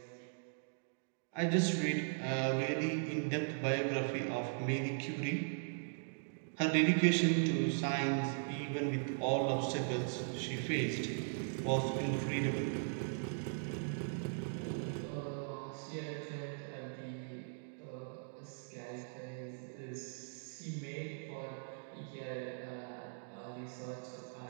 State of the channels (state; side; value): silent; left; digital silence